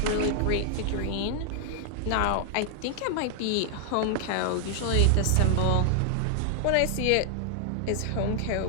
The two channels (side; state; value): both; different; correlation 0.00